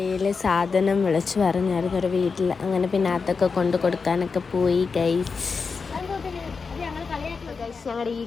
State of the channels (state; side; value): quieter; right; 5.0 dB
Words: സാധനം വിളിച്ച് പറഞ്ഞായിരുന്നു ഒരു വീട്ടിൽ. അങ്ങനെ പിന്നെ അതൊക്കെ കൊണ്ട് കൊടുക്കാനൊക്കെ പോയി ഗൈസ്. ഞങ്ങളുടെ ഈ